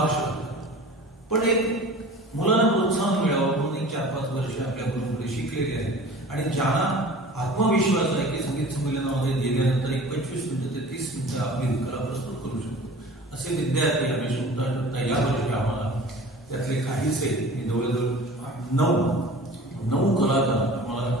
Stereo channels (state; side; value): normal; both; correlation 0.41